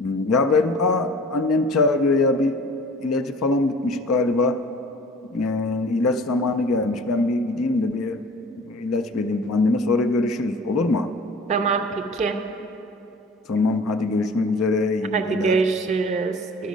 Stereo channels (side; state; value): both; normal; correlation 0.45